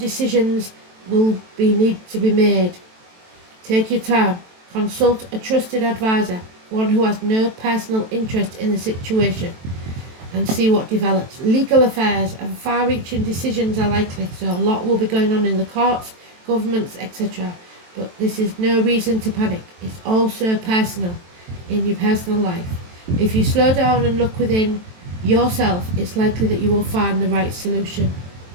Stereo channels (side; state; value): left; late; 23 ms